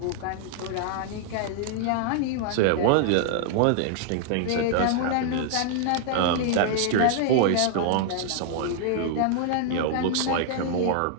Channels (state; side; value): different; both; correlation 0.00